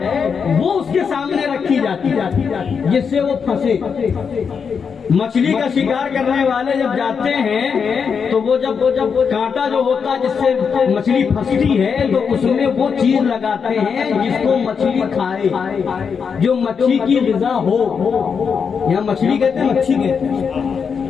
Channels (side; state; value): right; quieter; 6.2 dB